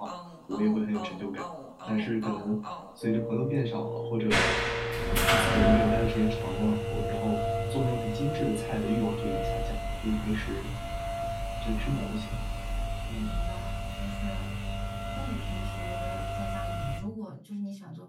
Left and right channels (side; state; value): both; identical; correlation 1.00